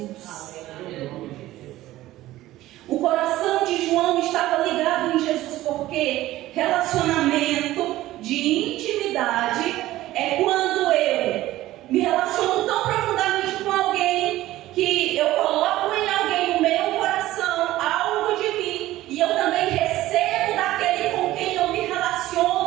O coração de João estava ligado em Jesus, porque relacionamento de intimidade é quando eu me relaciono tão profundamente com alguém que eu coloco em alguém o meu coração, algo de mim, e eu também recebo daquele com quem eu me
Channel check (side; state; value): left; quieter; 15.7 dB